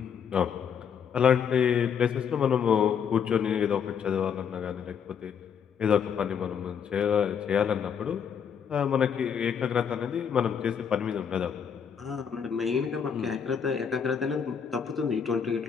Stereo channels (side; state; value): right; quieter; 7.3 dB